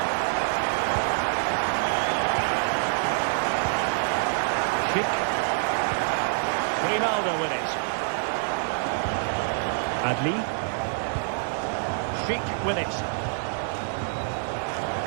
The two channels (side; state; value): left; silent; digital silence